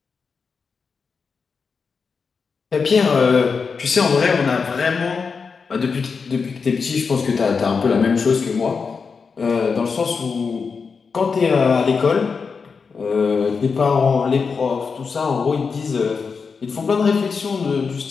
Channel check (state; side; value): quieter; right; 5.3 dB